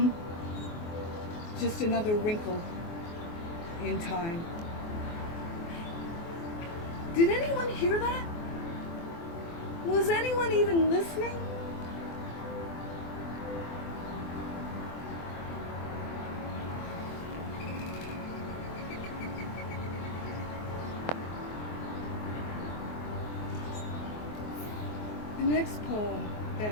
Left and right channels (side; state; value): right; late; 24 ms